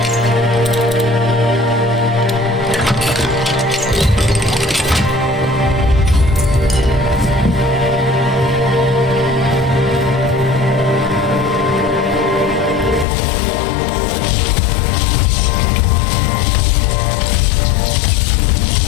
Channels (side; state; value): right; drops out; at 13.1 s